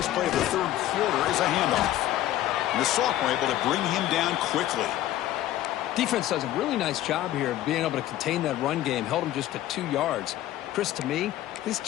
play of the third quarter is a handoff. And the sophomore able to bring him down quickly. Defense does a really nice job here of being able to contain that run game. Held him just to 2 yards. Chris, to me, this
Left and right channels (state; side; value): quieter; right; 13.7 dB